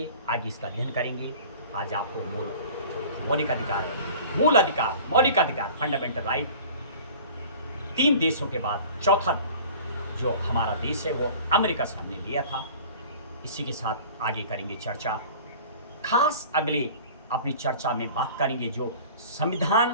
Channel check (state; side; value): inverted; both; correlation -0.43